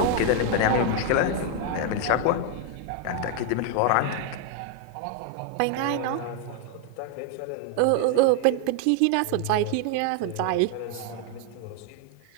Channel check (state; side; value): different; both; correlation 0.00